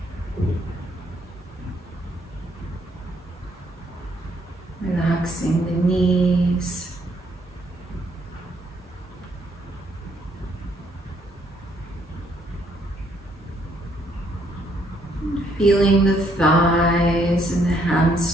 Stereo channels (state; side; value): normal; both; correlation 0.69